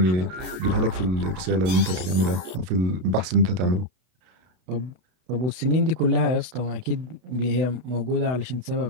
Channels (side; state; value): left; late; 32 ms